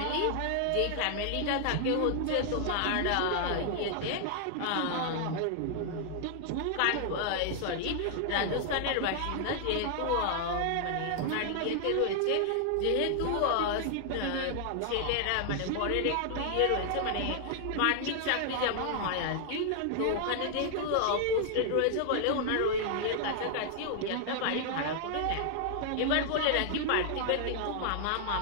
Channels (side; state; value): both; different; correlation 0.00